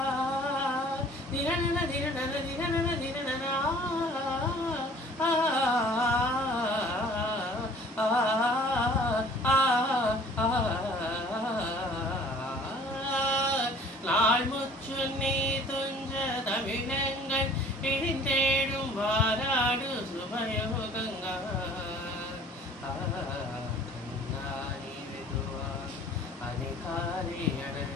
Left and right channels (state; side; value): normal; both; correlation 0.51